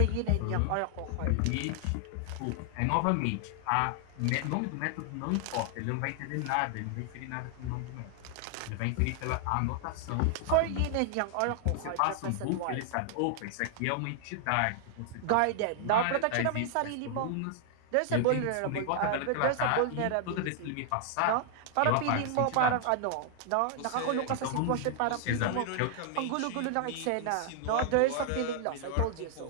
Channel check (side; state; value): both; different; correlation 0.00